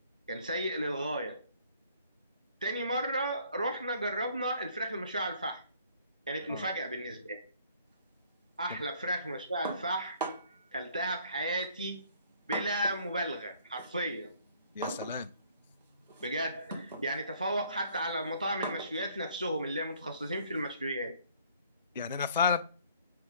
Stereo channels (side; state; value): both; inverted; correlation -0.60